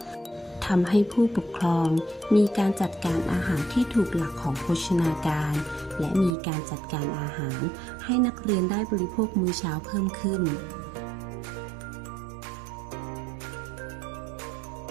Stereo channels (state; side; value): drops out; left; at 6.4 s